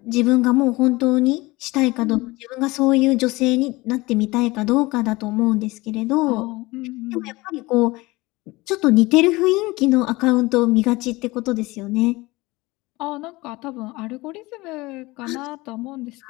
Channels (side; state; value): right; quieter; 21.6 dB